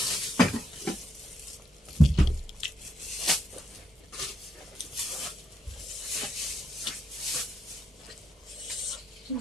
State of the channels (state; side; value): normal; both; correlation 0.78